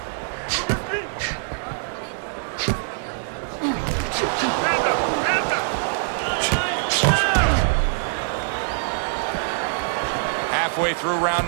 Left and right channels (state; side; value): silent; left; digital silence